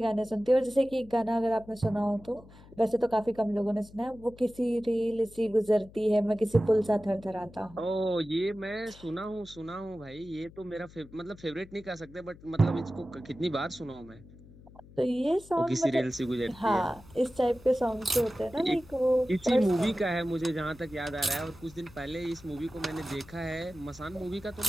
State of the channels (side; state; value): left; noise; hum, 21 dB below the sound